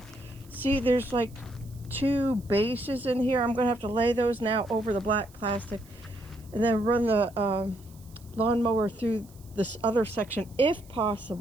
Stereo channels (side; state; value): right; noise; hiss, 26 dB below the sound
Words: see, there's like 2 bases in here. I'm gonna have to lay those now over the black plastic and then run the lawnmower through this other section if